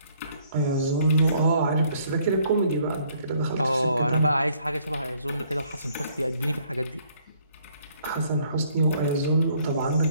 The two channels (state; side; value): inverted; both; correlation -0.64